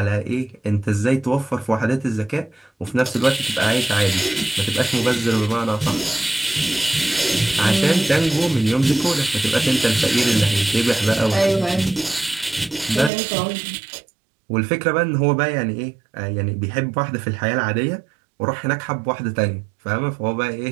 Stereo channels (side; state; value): left; drops out; at 13.1 s